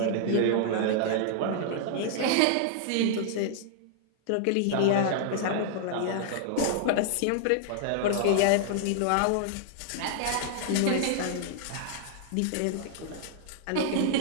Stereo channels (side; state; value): both; different; correlation -0.01